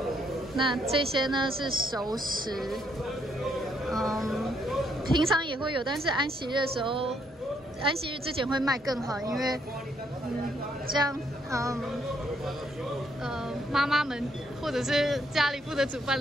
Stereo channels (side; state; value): both; normal; correlation 0.72